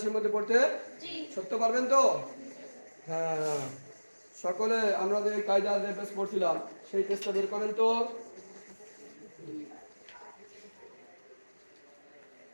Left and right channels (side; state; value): both; inverted; correlation -1.00